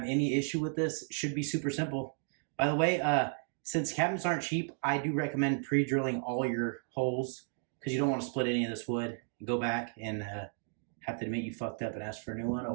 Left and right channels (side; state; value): left; silent; 55 dB below the other